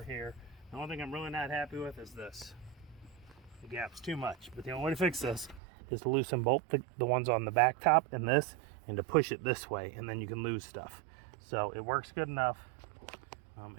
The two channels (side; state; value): left; drops out; at 5.6 s